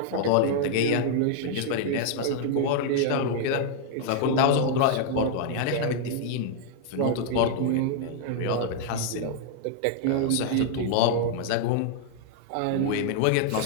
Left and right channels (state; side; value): different; both; correlation 0.00